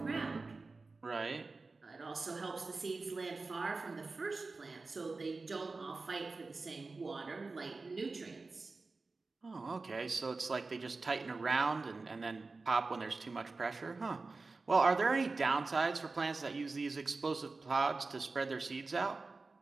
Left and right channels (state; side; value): quieter; left; 3.8 dB